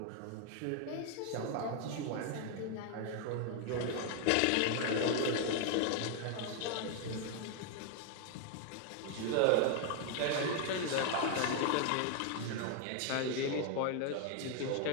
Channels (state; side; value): different; both; correlation 0.00